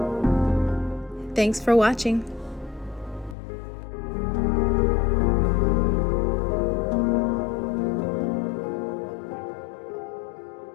Thanks for watching.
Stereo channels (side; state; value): right; drops out; at 3.4 s